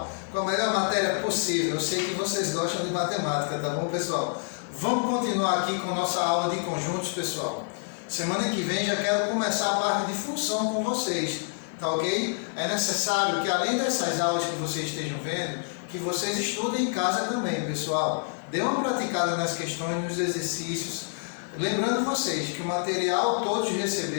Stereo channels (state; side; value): silent; right; 60 dB below the other